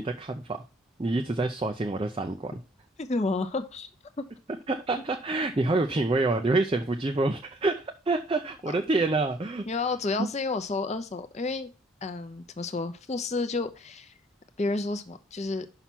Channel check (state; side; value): normal; both; correlation 0.61